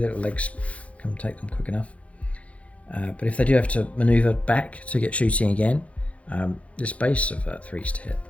little legs can take them quick enough. But if they do have to maneuver back to get shooting again, this base of 3s to hit.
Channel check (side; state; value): right; late; 0.064 ms